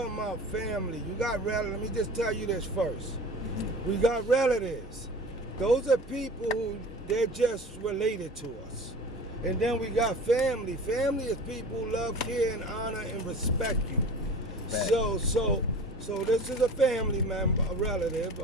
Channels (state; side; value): normal; both; correlation 0.39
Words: about family. You got relatives. Let me just tell you this first. We got relatives. Those are people who they're just related to us. And then we got family. Family is people who love, care, and honor and respect you. So this is a family member, a relative,